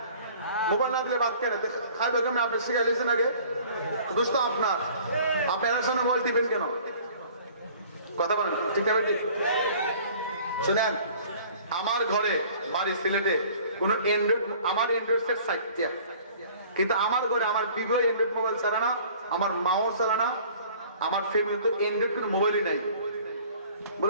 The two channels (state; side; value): inverted; both; correlation -0.50